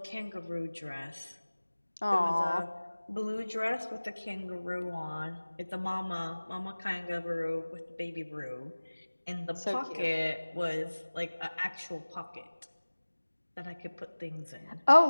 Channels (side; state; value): both; inverted; correlation -1.00